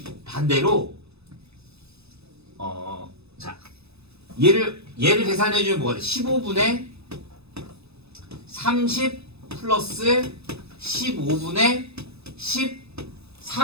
반대로 자 얘를 계산해주면 뭐가 돼? 15분의 30 플러스 15분의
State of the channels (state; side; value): late; left; 0.79 ms